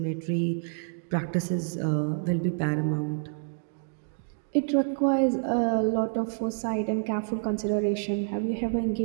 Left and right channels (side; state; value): left; silent; digital silence